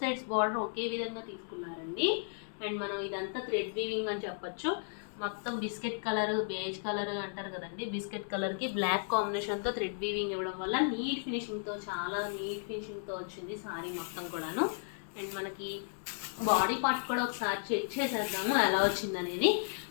బార్డర్ ఒకే విధంగా తీసుకున్నారండి. అండ్ మనం ఇదంతా థ్రెడ్ వీవింగ్ అని చెప్పచ్చు. మొత్తం బిస్కెట్ కలర్ బేజ్ కలర్ అంటారు కదండి, బిస్కెట్ కలర్కి బ్లాక్ కాంబినేషన్తో థ్రెడ్ వీవింగ్ ఇవ్వడం వల్ల నీట్ ఫినిషింగ్తో చాలా నీట్ ఫినిషింగ్తో వచ్చింది శారీ మొత్తం కూడాను. అండ్ మనకి బాడీ పార్ట్ కూడా ఒకసారి చెక్ చేసేద్దాము ఎలా వచ్చిందనేది.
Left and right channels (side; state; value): right; silent; digital silence